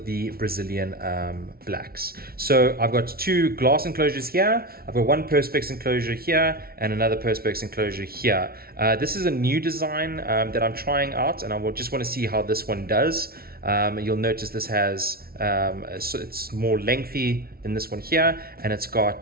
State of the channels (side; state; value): left; late; 0.44 ms